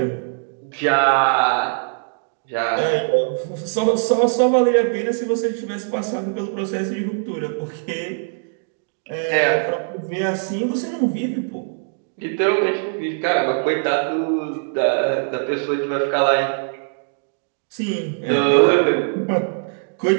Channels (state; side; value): silent; left; 65 dB below the other